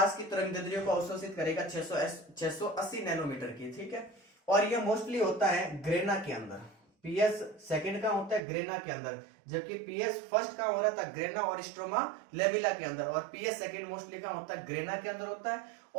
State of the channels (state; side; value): drops out; left; at 8.4 s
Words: की तरंगदैर्ध्य को अवशोषित करेगा 680 नैनोमीटर की। ठीक है, और ये मोस्टली होता है ग्रेना के अंदर। पीएस सेकंड का होता है ग्रेना के अंदर, जबकि पीएस फर्स्ट का हो रहा था ग्रेना और स्ट्रोमा लेमिला के अंदर, और पीएस सेकंड मोस्टली का होता है ग्रेना के अंदर होता है।